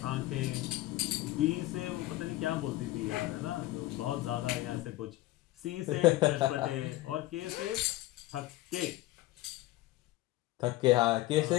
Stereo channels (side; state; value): right; quieter; 17.1 dB